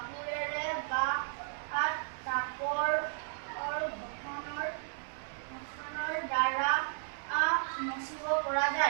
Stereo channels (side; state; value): left; silent; 55 dB below the other